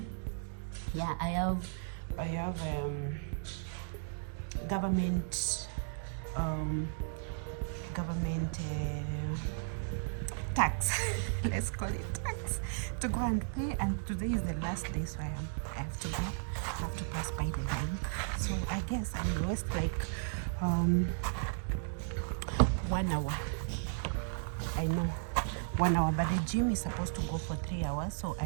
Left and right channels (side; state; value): left; silent; digital silence